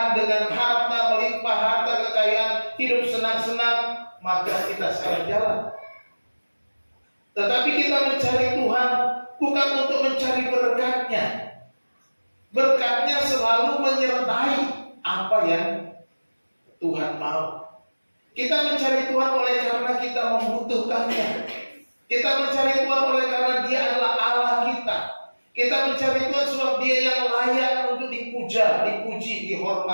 dengan harta melimpah, harta kekayaan, hidup senang-senang, maka kita salah jalan. Tetapi kita mencari Tuhan bukan untuk mencari berkatnya. Berkatnya selalu menyertai apa yang Tuhan mau. Kita mencari Tuhan oleh karena kita membutuhkannya. Kita mencari Tuhan oleh karena Dia adalah Allah kita. Kita mencari Tuhan sebab Dia yang layak untuk dipuja, dipuji,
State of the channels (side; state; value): both; inverted; correlation -1.00